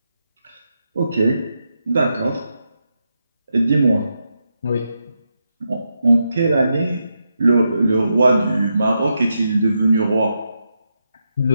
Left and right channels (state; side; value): inverted; both; correlation -0.85